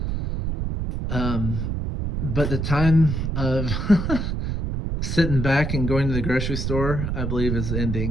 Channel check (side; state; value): right; noise; rumble, 2 dB below the sound